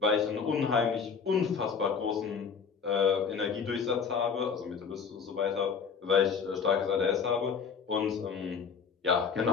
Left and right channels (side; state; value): right; quieter; 6.0 dB